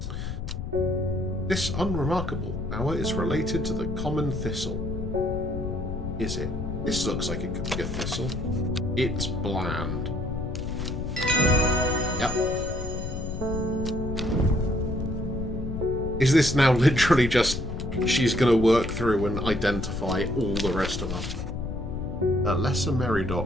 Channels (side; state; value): left; noise; rumble, 6 dB below the sound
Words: This unremarkable flower is related to the common thistle. Is it? This looks like it could be a thistle. It's bland. Yep. Is this now literally just she's going to work through and identify all the rest of them? Lesser